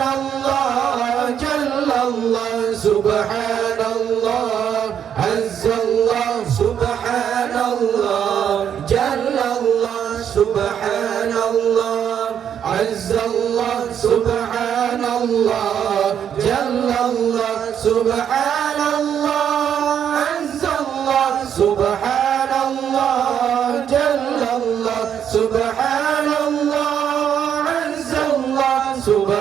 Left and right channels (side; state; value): left; quieter; 8.8 dB